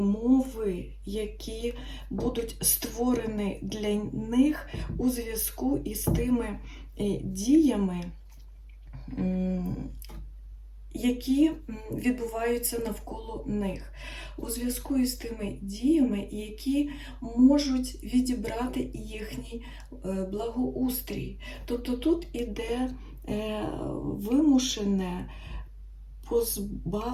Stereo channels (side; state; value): both; identical; correlation 1.00